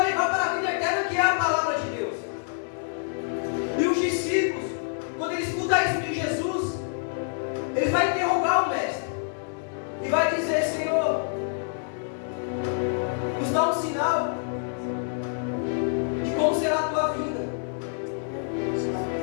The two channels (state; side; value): silent; right; digital silence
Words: levar para a vida eterna, que é a palavra de Deus. E os discípulos, quando eles escutam isso de Jesus, eles vão interrogar o mestre e vai dizer: Senhor, nos dá um sinal de como será a tua vinda.